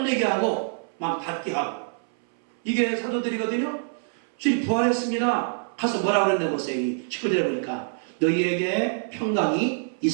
하고 막 받게 하고 이게 사도들이거든요. 주님 부활했습니다. 가서 뭐라고 그랬나 보세요. 19절에 보니까 너희에게 평강이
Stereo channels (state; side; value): silent; left; 61 dB below the other